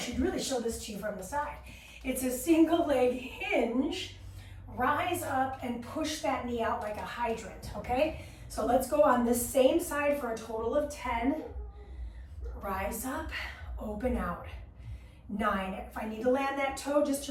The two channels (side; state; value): both; identical; correlation 1.00